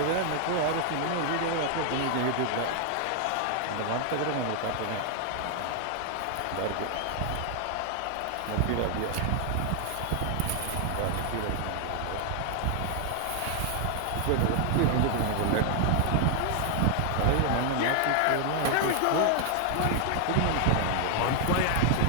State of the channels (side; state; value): both; different; correlation 0.00